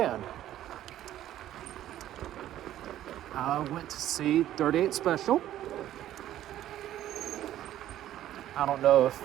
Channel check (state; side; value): quieter; left; 12.7 dB